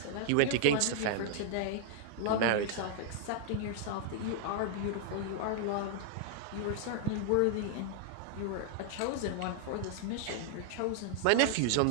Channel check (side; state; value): both; different; correlation -0.01